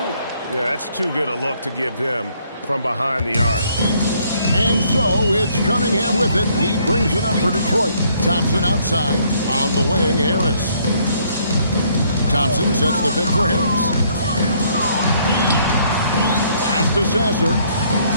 Yeah, that's too good a look to give him from behind the arc. And so it's Cunningham with it. He brings it up for Detroit. Thompson outside. On the wing, Harris. Thompson sets the pick for Harris. Pass to Sasser.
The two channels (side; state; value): both; inverted; correlation -0.66